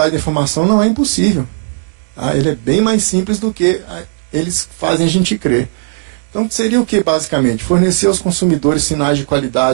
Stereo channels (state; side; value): silent; left; digital silence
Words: da informação não é impossível. Tá? Ele é bem mais simples do que eles fazem a gente crer. Então seria o que basicamente? Fornecer aos consumidores sinais de